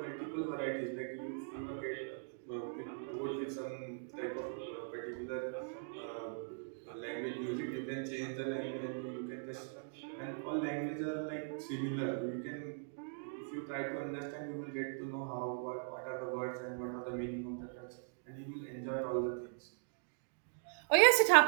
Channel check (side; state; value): left; silent; digital silence